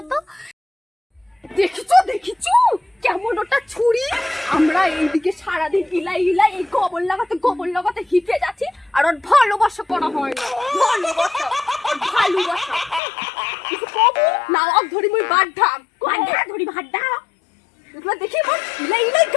তো। দেখিছো দেখিছো কেমন ওটা ছুরি, আমরা এইদিকে সারাদিন ইলাই ইলাই এই গোবর লাগাতে হিপে যাচ্ছি, আর ওর ভালোবাসা করা হয় না, ভালোবাসা কিছু কবু না, অক ধরি মুই বাড্ঢাম ধরি ভাড্ডাম, এগুলো দেখি আমার ইলাই ইলাই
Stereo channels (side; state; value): right; drops out; at 13.0 s